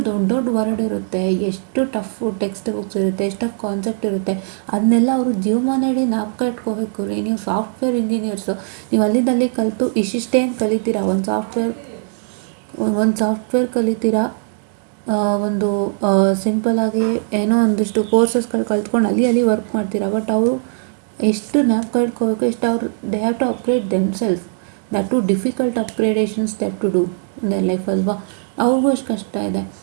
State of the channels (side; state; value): left; silent; 59 dB below the other